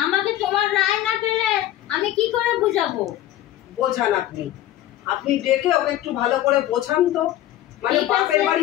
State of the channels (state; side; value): quieter; right; 13.5 dB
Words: আমাকে তোমার রায় না পেলে আমি কি করে বুঝাবো? বোঝান আপনি, আপনি ডেকে ওকে একটু ভালো করে বোঝান তো। মানে ঠিক আছে। বাপের